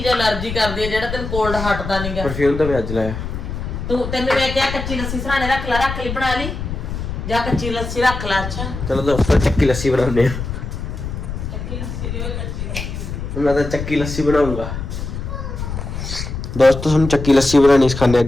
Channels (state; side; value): noise; left; rumble, 6 dB below the sound